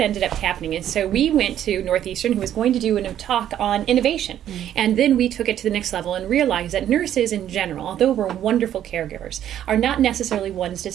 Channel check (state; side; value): quieter; left; 10.9 dB